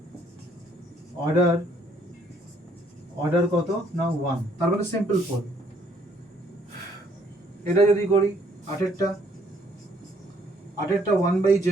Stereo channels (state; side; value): normal; both; correlation 0.65